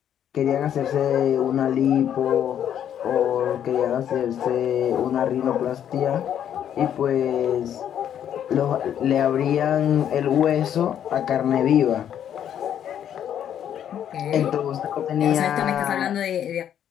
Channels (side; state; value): right; quieter; 9.8 dB